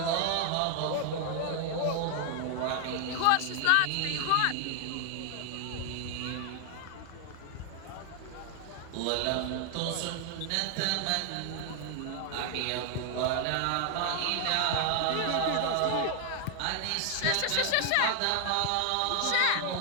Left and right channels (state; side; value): different; both; correlation 0.00